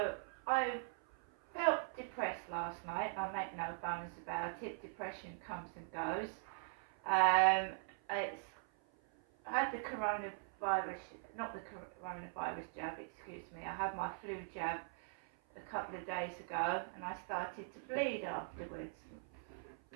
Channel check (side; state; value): left; silent; 50 dB below the other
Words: I felt depressed last night. I make no bones about it. Depression comes and goes. I had the coronavirus, not the coronavirus jab, excuse me. I had my flu jab a couple of days ago and I started to bleed afterwards.